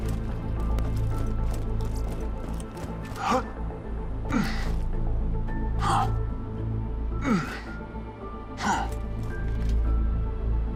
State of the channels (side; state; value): both; identical; correlation 1.00